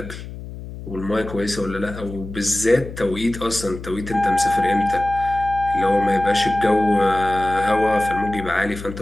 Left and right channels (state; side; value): noise; left; hum, 12 dB below the sound